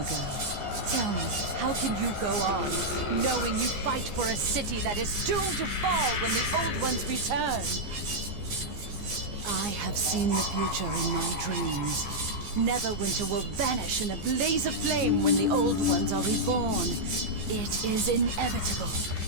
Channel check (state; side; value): late; left; 14 ms